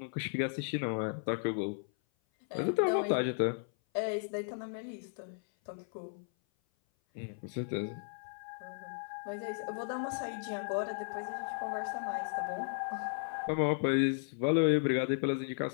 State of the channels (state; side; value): silent; right; 54 dB below the other